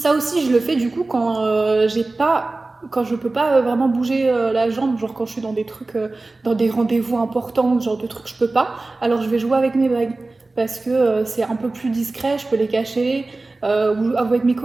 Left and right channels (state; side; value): quieter; left; 3.3 dB